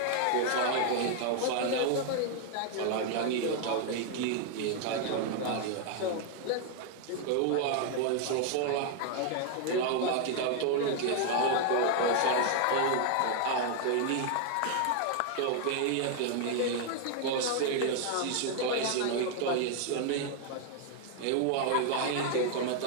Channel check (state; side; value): different; both; correlation 0.00